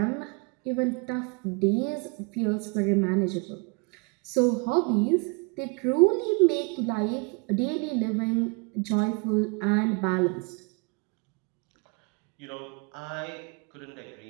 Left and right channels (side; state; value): left; quieter; 31.1 dB